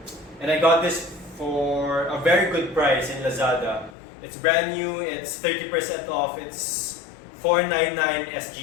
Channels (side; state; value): right; drops out; at 4.0 s